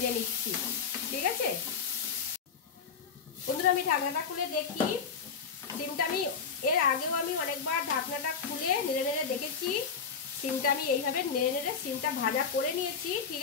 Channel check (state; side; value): quieter; right; 6.0 dB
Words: নিচ্ছি। ঠিক আছে, বন্ধুরা আমি ঢাকনাটা খুলে দেখি। সিমটা আমি এর আগেও আমি অনেকবার ঢাকনাটা খুলে নেড়ে নেড়ে দেখেছি। সিমটা আমি এইভাবে নেড়ে নেড়ে সিমটা ভাজা করে নিয়েছি, ঠিক